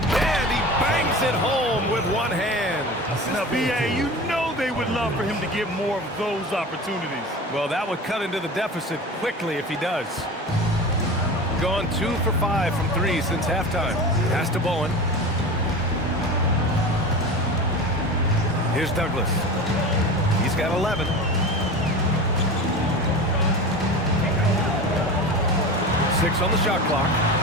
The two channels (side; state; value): both; normal; correlation 0.31